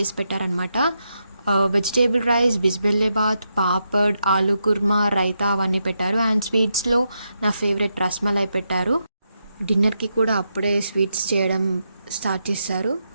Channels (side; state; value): both; inverted; correlation -0.84